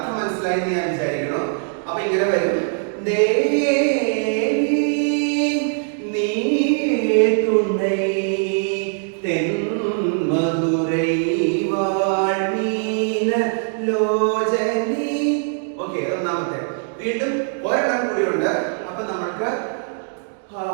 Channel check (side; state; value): left; silent; 65 dB below the other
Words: മനസ്സിലായി എന്ന് ഞാൻ വിചാരിക്കണം. അപ്പൊ ഇങ്ങനെ വരും. ദേവി നീ തുണൈ തെന്മധുരൈ വാഴ്മീന ലോചനി. ഓക്കെ, ഒന്നാമത്തെ. വീണ്ടും ഒരെണ്ണം കൂടിയുണ്ട്. അപ്പൊ നമ്മൾക്ക്